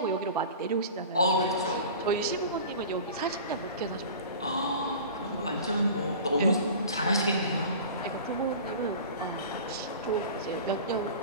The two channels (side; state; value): both; inverted; correlation -0.38